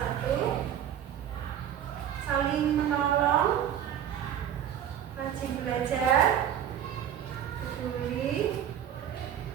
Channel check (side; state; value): left; quieter; 9.9 dB